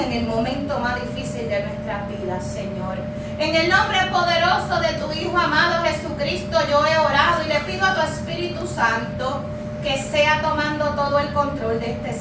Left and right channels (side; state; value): both; identical; correlation 1.00